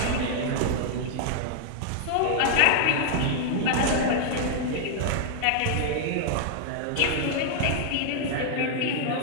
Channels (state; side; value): different; both; correlation -0.01